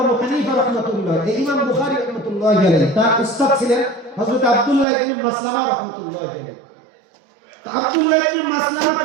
আবু হানিফা রাহমাতুল্লাহ, এই ইমাম বুখারী রাহমাতুল্লাহি আলাইহি, তার উস্তাদ ছিলেন হযরত আব্দুল্লাহ ইবনে মাসলামা রাহমাতুল্লাহি আলাইহি। তো আব্দুল্লাহ ইবনে মাসলামা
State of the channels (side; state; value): left; drops out; at 4.9 s